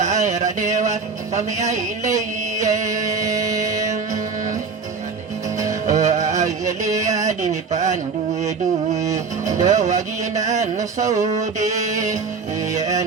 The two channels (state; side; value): quieter; left; 5.1 dB